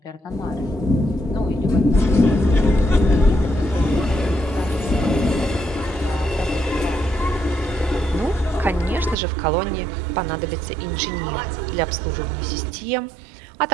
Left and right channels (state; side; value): drops out; left; at 9.2 s